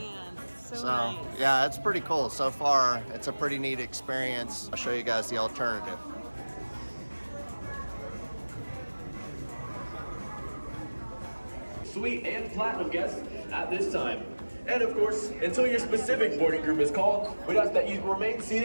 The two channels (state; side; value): inverted; both; correlation -1.00